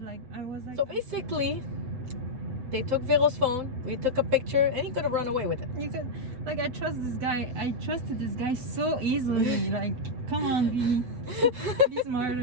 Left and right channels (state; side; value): late; left; 8.0 ms